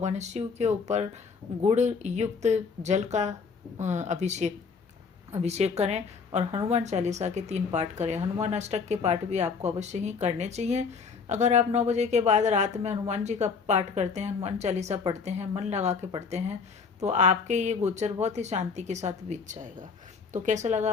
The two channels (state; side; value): quieter; right; 5.3 dB